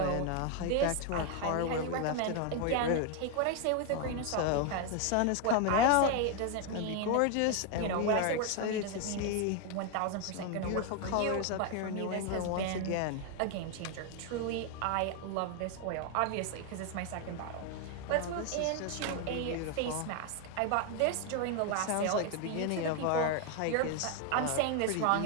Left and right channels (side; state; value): both; different; correlation 0.01